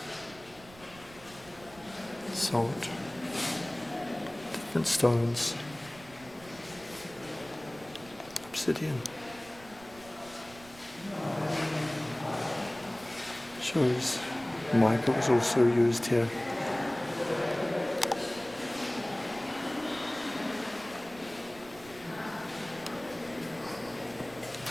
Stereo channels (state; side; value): noise; right; rumble, 21 dB below the sound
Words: Salt. Different stones, obsidian, shows mica was also used here.